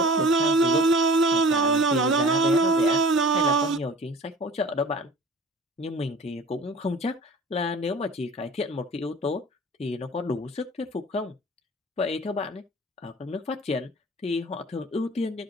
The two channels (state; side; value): normal; both; correlation 0.43